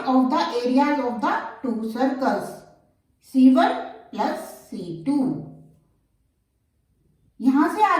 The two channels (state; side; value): identical; both; correlation 1.00